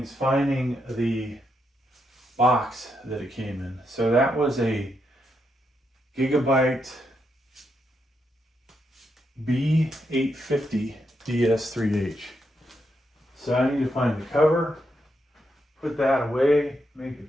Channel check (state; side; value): normal; both; correlation 0.81